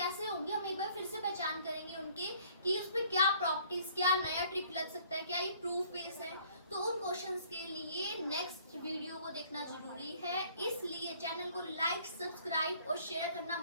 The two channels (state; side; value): inverted; both; correlation -0.58